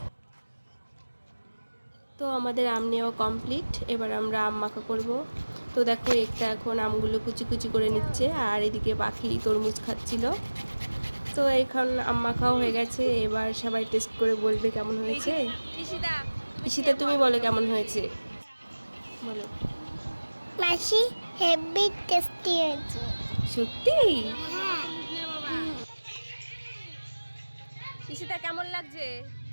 তো আমাদের আম নেওয়া কমপ্লিট, এবার আমরা আম মাখা করব। তো দেখো একটা এখন আমগুলো কুচি কুচি করে নিচ্ছে, আর এদিকে পাখি তরমুজ খাচ্ছিল। তো এখন আম মাখাও হয়ে গেছে, এবার সবাই টেস্ট করে বলবে কেমন হয়েছে। ঈশিতা তুমি বলো কেমন হয়েছে, বলো। মাসি হেভি টেস্টি হয়েছে। সত্যি? ঈশিতা কেমন লাগছে?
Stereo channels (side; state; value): both; inverted; correlation -1.00